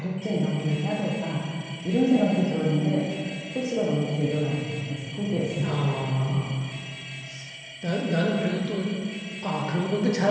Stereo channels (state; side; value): identical; both; correlation 1.00